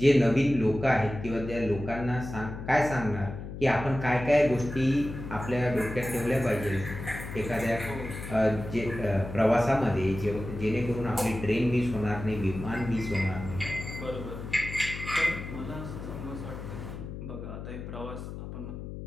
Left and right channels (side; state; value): left; noise; hum, 9 dB below the sound